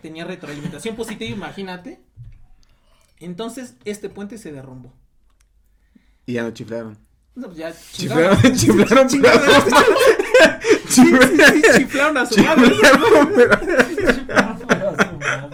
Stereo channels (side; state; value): both; identical; correlation 1.00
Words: retroalimentación positiva, imagínate. Entonces, este puente se derrumbó. Y ya no chiflaron. No, pues ya Chiflaron a su madre.